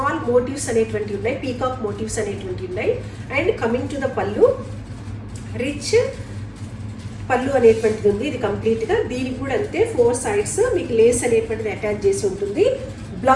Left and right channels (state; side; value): identical; both; correlation 1.00